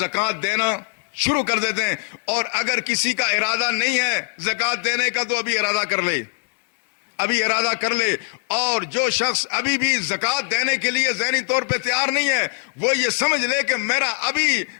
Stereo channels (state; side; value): silent; right; 63 dB below the other